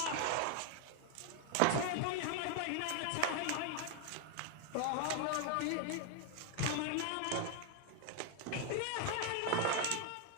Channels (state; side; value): different; both; correlation 0.01